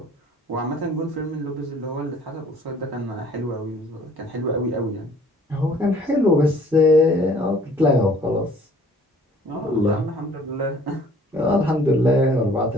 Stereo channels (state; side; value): normal; both; correlation 0.55